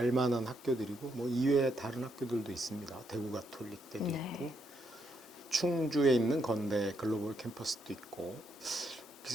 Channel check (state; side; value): normal; both; correlation 0.77